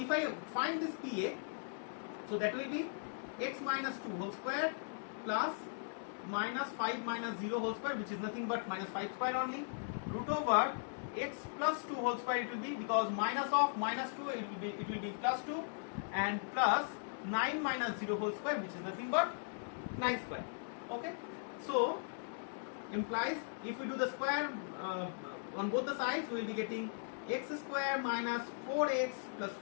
I find this PA, so that will be x minus 2 whole square plus minus 5 minus 0 whole square, which is nothing but minus 5 square only, root over x plus 2 whole square it will be, because minus of minus 2 it will be plus 2, and plus 9 minus 0 whole square, which is nothing but 9 square. Okay, so implies if we do the square on both the sides, we will be getting x square minus 4x plus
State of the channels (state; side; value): silent; right; digital silence